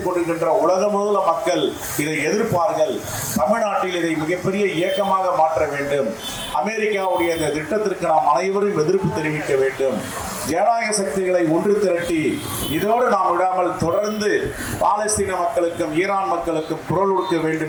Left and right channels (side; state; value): both; identical; correlation 1.00